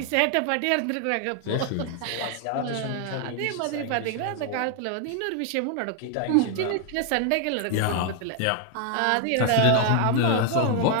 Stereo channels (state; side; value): different; both; correlation 0.00